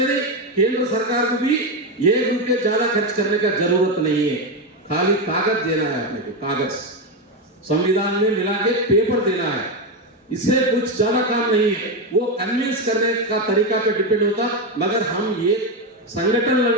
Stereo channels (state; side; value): normal; both; correlation 0.10